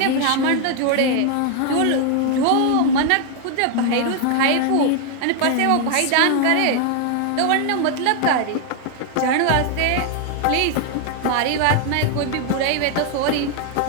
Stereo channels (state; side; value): different; both; correlation 0.00